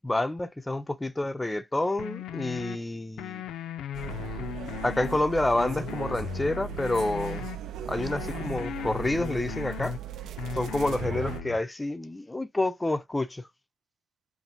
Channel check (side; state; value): both; normal; correlation 0.89